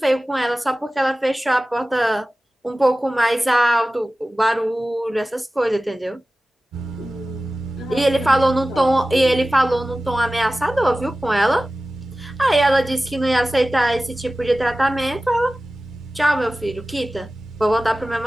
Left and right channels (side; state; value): both; normal; correlation 0.96